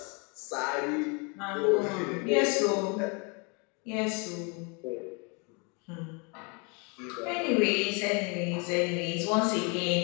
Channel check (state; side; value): quieter; right; 32.8 dB